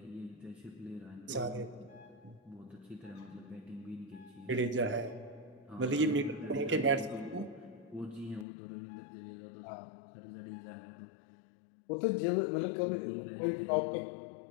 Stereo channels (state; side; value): drops out; right; at 8.5 s